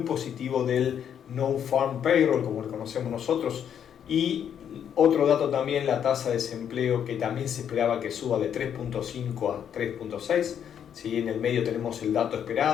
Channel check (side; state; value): right; quieter; 8.8 dB